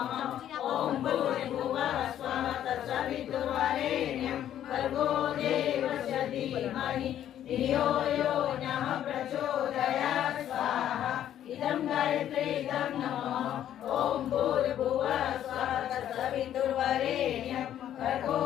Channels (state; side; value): quieter; right; 11.0 dB